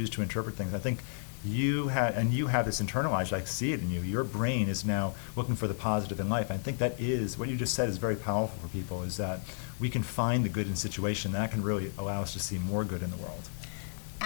to interpret things. I think you have this internalized. I see it in you. Your brain is now looking for the positive in life. I think that is what you just said is very powerful for people. Is that we can find the good in a situation that can really allow us to see more good in the world.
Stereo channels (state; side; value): silent; right; digital silence